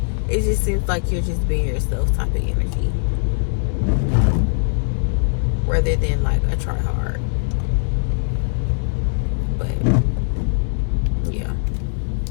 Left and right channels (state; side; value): silent; right; digital silence